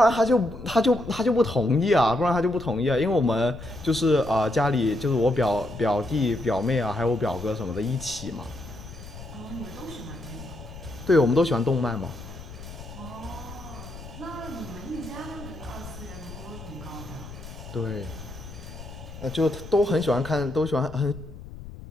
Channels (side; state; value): left; noise; rumble, 14 dB below the sound